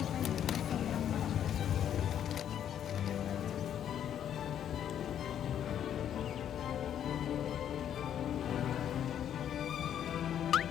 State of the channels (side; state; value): right; quieter; 9.8 dB